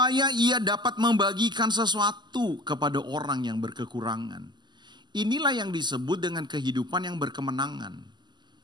ia dapat membagikan sesuatu kepada orang yang berkekurangan. Inilah yang disebut dengan kehidupan yang berkemenangan.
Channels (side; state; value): left; late; 0.21 ms